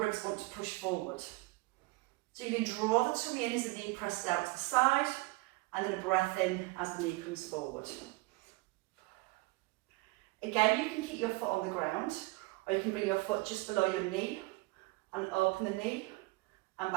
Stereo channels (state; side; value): quieter; left; 22.9 dB